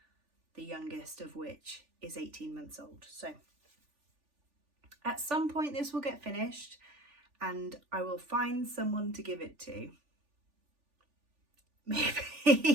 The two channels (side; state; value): left; late; 3.4 ms